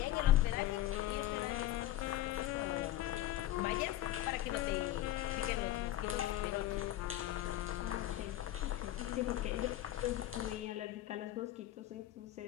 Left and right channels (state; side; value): quieter; right; 14.1 dB